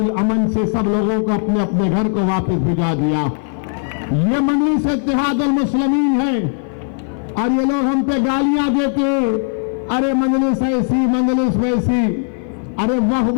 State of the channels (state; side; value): silent; right; 56 dB below the other